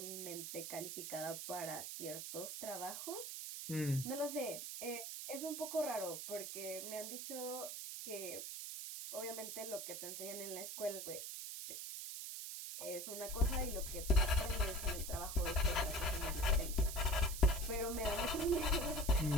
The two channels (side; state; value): right; noise; hiss, 6 dB below the sound